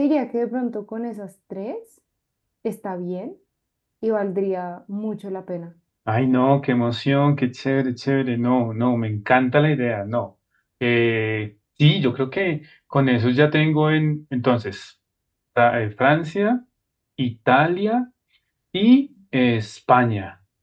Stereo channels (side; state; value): both; identical; correlation 1.00